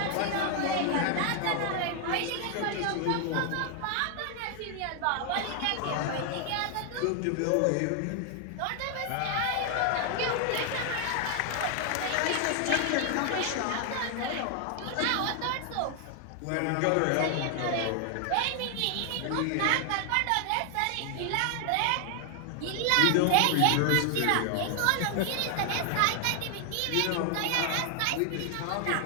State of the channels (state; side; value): different; both; correlation 0.00